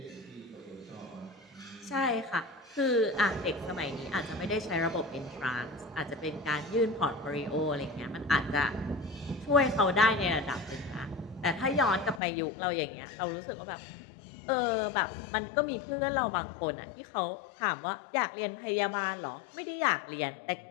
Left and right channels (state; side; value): drops out; right; at 12.2 s